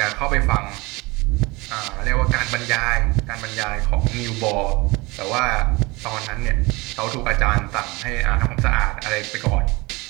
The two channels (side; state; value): left; quieter; 24.0 dB